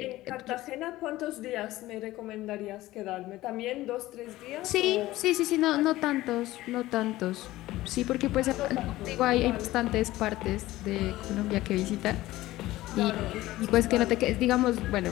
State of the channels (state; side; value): quieter; right; 16.8 dB